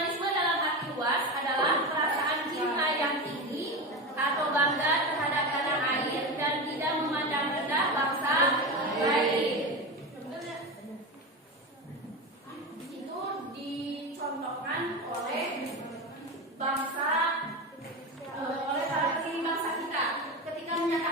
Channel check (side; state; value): both; normal; correlation 0.21